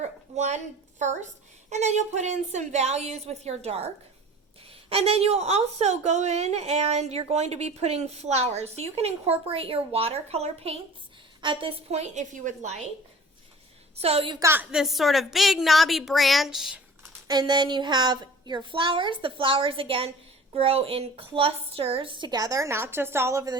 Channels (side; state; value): both; normal; correlation 0.43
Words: one first, and then you'll put in some values with your dark. And then you'll also go in and you're going to be putting flowers. So you can incorporate your watercolor paints at this point if you would like. So you've got this sort of big knobby branch, and then you have your flowers. The flowers, again, grow in clusters together, not just all over